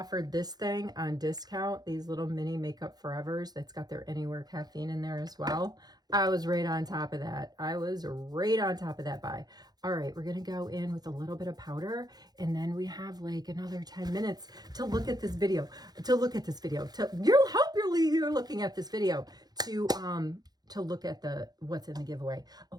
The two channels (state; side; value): late; left; 0.19 ms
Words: this thing on discount, these little mini Makeup Forevers, that's got their Anywhere caffeine in there as well, I was right on top of that. I was right on top of that buy. All right, we're going to go in with a little bit of powder, and then we have like another 10 minutes to look at this video, you're looking at this video to look at what's in the giveaway.